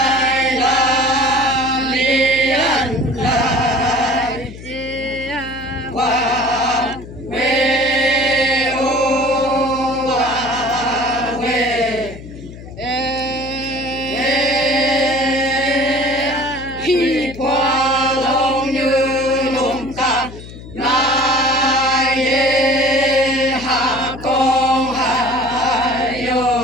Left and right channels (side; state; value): left; noise; hum, 15 dB below the sound